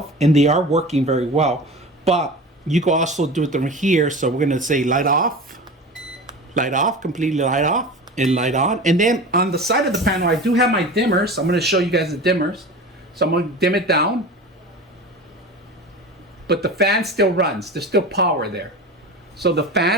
and they are working very well. But you can also do it from here. So we're gonna say light off, completely light off, and light on. And then on the side of the panel, I do have my dimmers. I'm gonna show you guys the dimmers. So I'm gonna dim it down, but the fan still runs. There's still power there. So the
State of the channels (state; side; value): normal; both; correlation 0.33